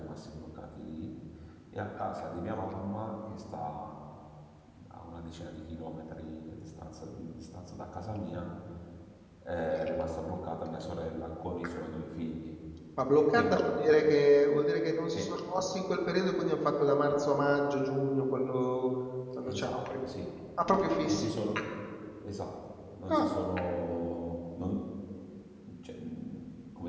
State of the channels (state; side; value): identical; both; correlation 1.00